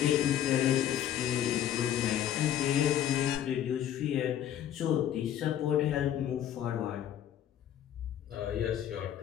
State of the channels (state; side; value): quieter; right; 10.7 dB